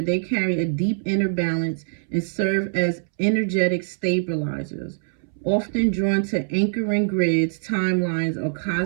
they carry a deep inner balance and serve as energetic stabilizers, often drawn to anchoring grids, timelines, or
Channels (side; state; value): left; silent; 63 dB below the other